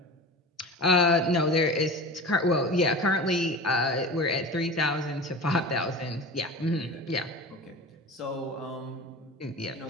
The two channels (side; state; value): both; normal; correlation 0.34